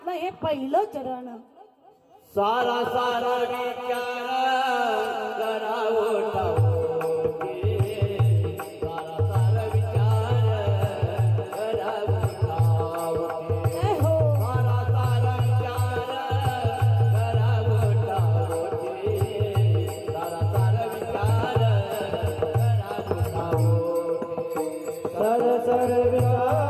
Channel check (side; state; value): both; identical; correlation 1.00